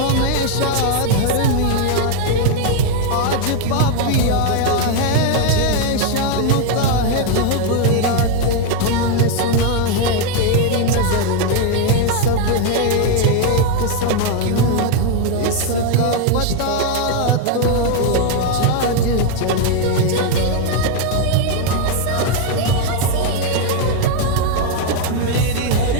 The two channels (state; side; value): different; both; correlation 0.01